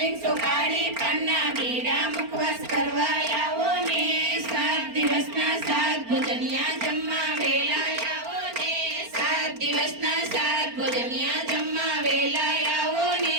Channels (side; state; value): left; late; 4.4 ms